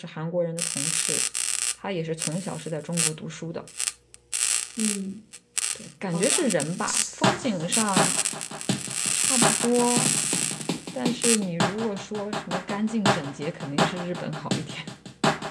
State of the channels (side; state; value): both; identical; correlation 1.00